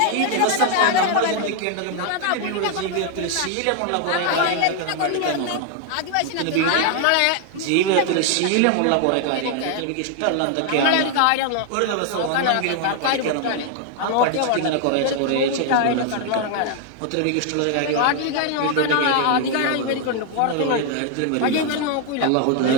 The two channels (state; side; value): different; both; correlation 0.00